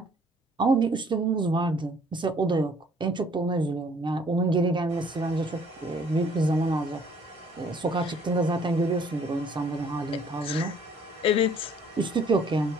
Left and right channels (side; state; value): both; normal; correlation 0.59